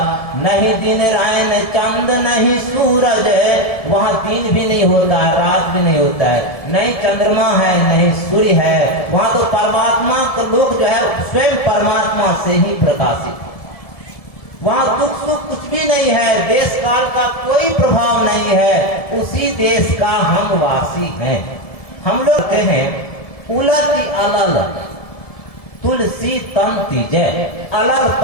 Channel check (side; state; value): right; late; 1.7 ms